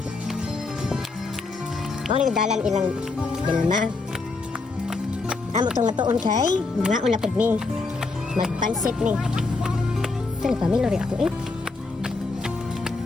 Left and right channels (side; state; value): right; quieter; 3.8 dB